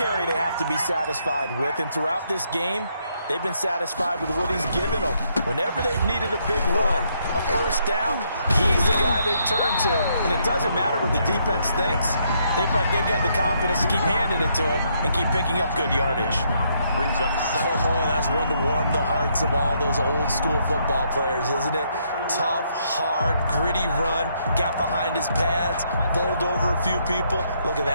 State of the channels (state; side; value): inverted; both; correlation -0.73